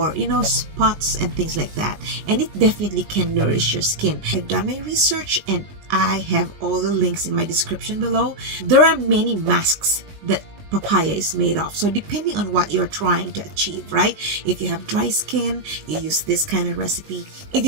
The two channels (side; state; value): left; late; 19 ms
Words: spots and things like that. And it definitely can nourish your skin. I've done my research and I have all the links in my description below. There are many masks that papaya is made of, so depending on what you're trying to achieve, right? If you have dry skin, you use this kind of recipe. If